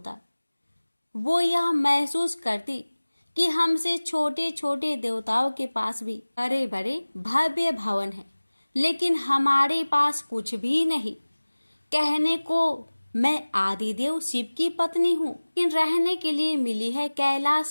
वो यह महसूस करती कि हमसे छोटे छोटे देवताओं के पास भी बड़े बड़े भव्य भवन हैं, लेकिन हमारे पास कुछ भी नहीं। कहने को मैं आदिदेव शिव की पत्नी हूँ, लेकिन रहने के लिए मिली है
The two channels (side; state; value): both; inverted; correlation -1.00